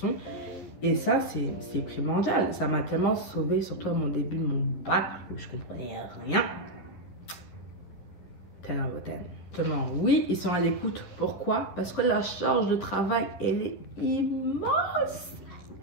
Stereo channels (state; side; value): late; right; 11 ms